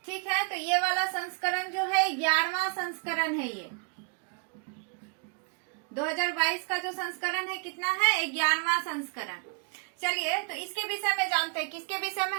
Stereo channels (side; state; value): left; quieter; 38.2 dB